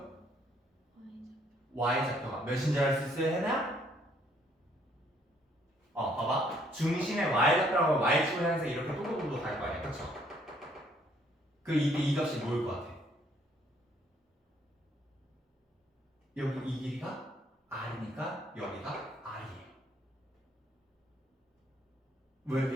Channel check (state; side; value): normal; both; correlation 0.66